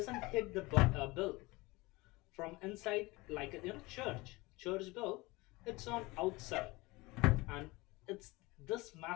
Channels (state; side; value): quieter; right; 22.6 dB